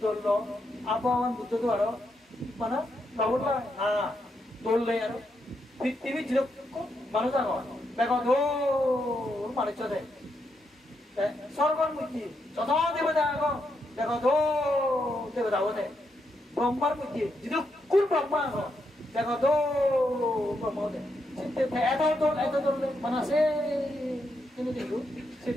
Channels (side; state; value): both; normal; correlation 0.81